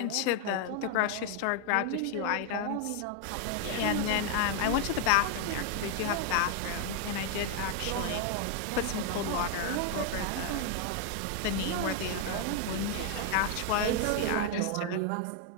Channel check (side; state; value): both; different; correlation 0.01